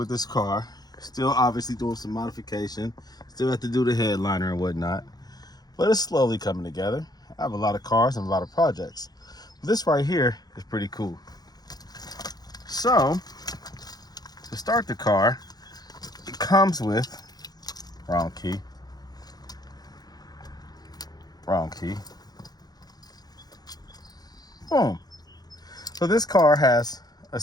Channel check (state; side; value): late; right; 0.19 ms